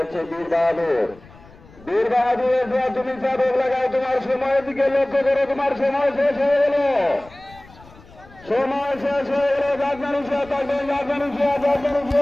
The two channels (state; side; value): noise; left; rumble, 23 dB below the sound